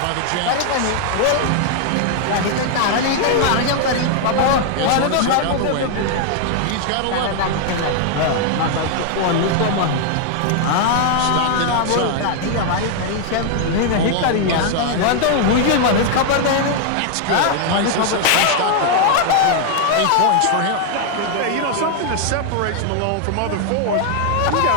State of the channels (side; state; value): both; different; correlation 0.00